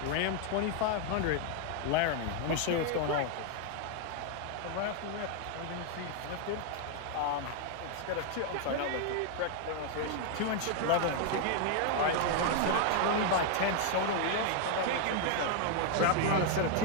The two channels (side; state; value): both; different; correlation 0.00